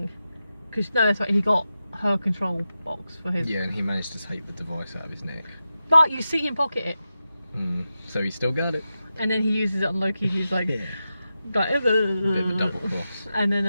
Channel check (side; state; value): both; inverted; correlation -0.91